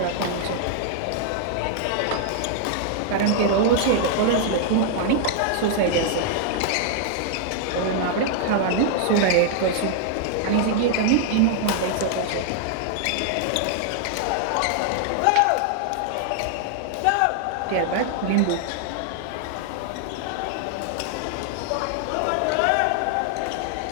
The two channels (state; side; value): different; both; correlation 0.00